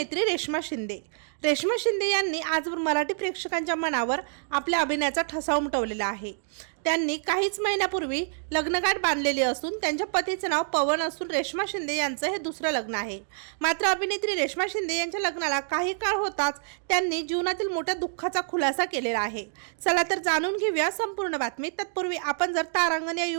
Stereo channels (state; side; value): silent; left; digital silence